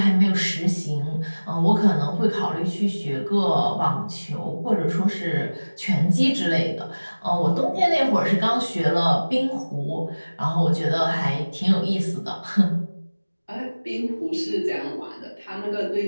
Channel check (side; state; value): both; inverted; correlation -1.00